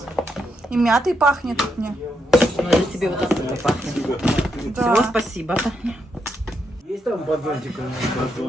И мятой пахнет мне. Ну, это тебе вот оттуда пахнет. Да. Всего спасибо, Таня. Есть там батончик?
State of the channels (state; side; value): normal; both; correlation 0.81